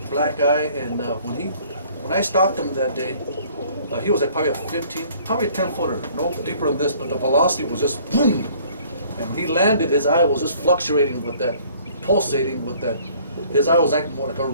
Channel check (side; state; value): both; inverted; correlation -0.56